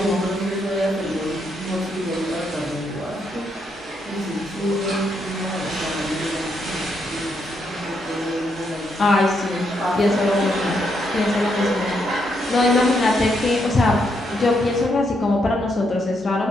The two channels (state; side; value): normal; both; correlation 0.78